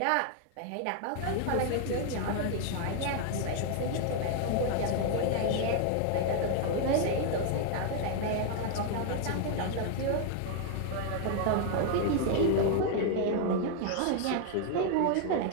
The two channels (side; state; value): both; different; correlation 0.00